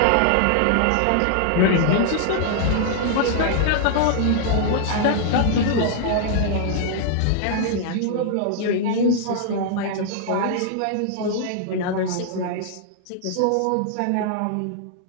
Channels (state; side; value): different; both; correlation -0.01